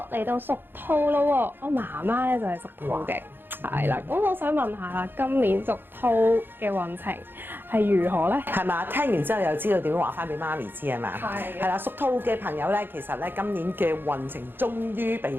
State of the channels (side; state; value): left; late; 0.10 ms